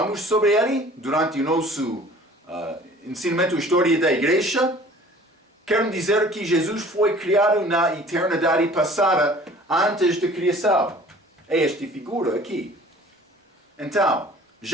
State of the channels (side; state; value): both; normal; correlation 0.49